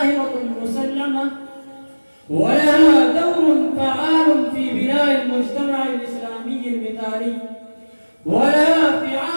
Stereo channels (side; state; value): both; inverted; correlation -1.00